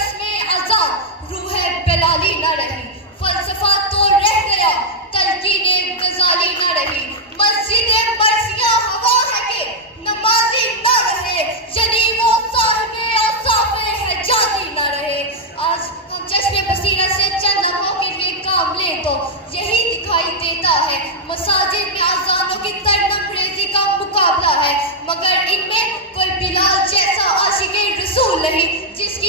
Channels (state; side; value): normal; both; correlation -0.02